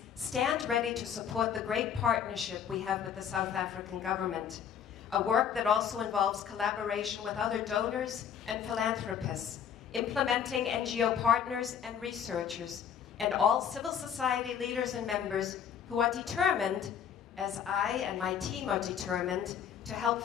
stand ready to support the great partnership we have with the South African government, a work that also involves collaboration with other donors and philanthropists, implementing NGO partners and researchers, and all civil society leaders and members who are determined, as I and my team are determined, to help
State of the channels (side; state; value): right; quieter; 8.3 dB